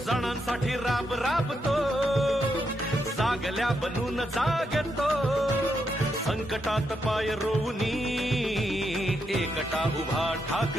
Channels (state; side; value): normal; both; correlation 0.81